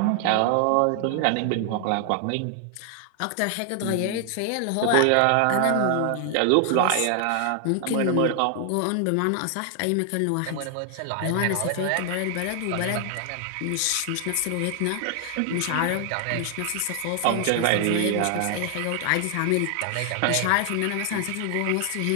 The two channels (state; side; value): different; both; correlation 0.00